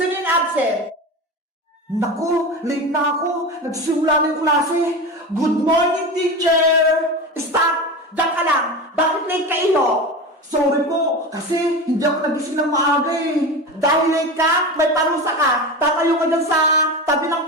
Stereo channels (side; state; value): both; normal; correlation 0.25